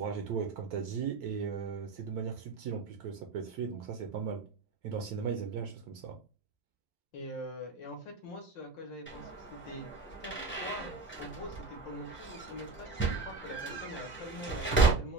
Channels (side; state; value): left; quieter; 3.9 dB